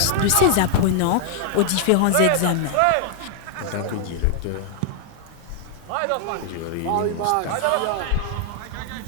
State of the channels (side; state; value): both; different; correlation 0.00